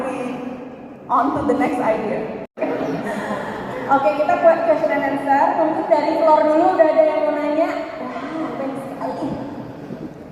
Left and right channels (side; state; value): both; identical; correlation 1.00